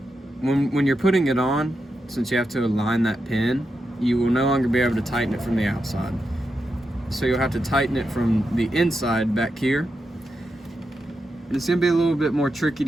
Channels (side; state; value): both; normal; correlation 0.87